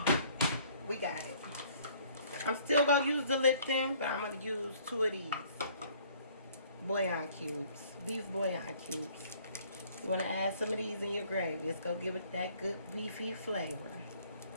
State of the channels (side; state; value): both; inverted; correlation -0.58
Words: We got it. I'm still gonna use the Lipton, but I'm gonna use 2 of these bouillon cubes, beef bouillon cubes. You wanna add some of these in your gravy. It's gonna give it that good beefy flavor.